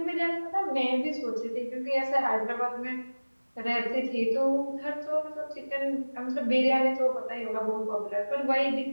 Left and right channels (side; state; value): both; inverted; correlation -1.00